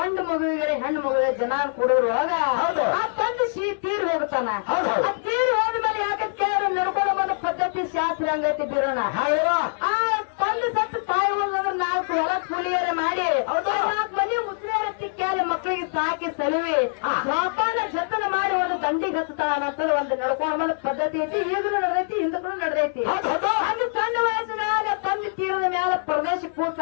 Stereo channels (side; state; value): right; silent; 63 dB below the other